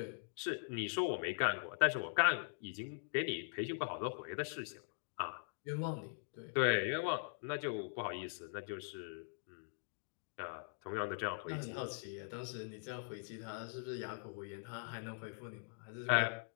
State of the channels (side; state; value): right; silent; digital silence